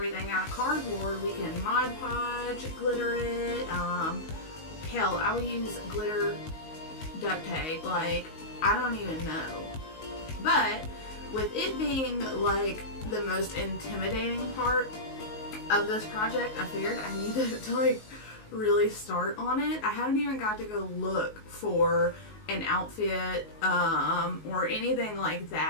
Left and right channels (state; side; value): late; right; 19 ms